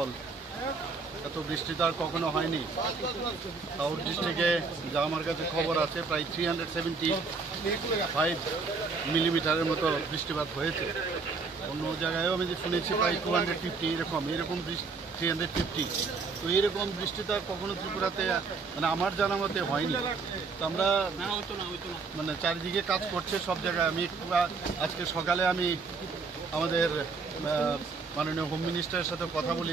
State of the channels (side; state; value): left; quieter; 4.5 dB